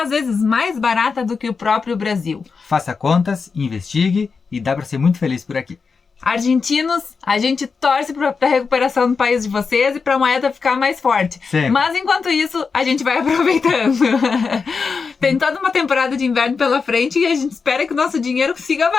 às vezes mais barata do que o próprio Brasil. Faça contas, investigue e dá pra ser muito feliz por aqui. Argentinos, a gente torce para a recuperação do país de vocês e para a moeda ficar mais forte. Sempre. Mas enquanto isso, a gente vai aproveitando. Tem toda uma temporada de inverno pela frente e a gente espera que o nosso dinheiro siga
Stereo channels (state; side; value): quieter; right; 5.1 dB